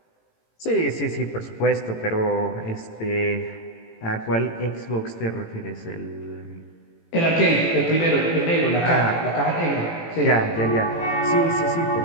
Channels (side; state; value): right; late; 18 ms